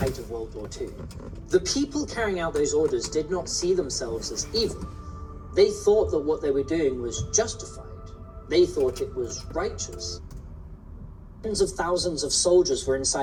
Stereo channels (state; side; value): identical; both; correlation 1.00